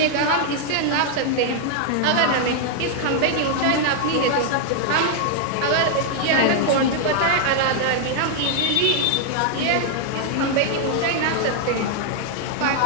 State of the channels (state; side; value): different; both; correlation 0.00